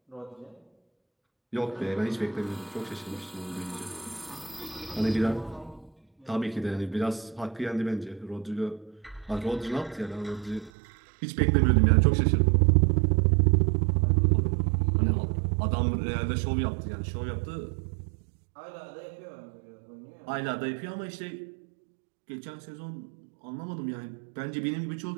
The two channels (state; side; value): drops out; left; at 10.7 s